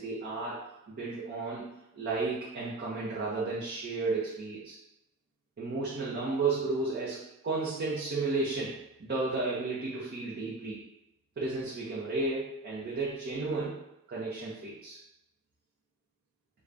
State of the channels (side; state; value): left; quieter; 3.0 dB